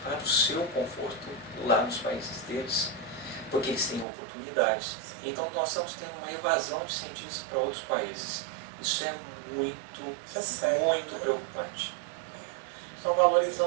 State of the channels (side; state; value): left; drops out; at 4.0 s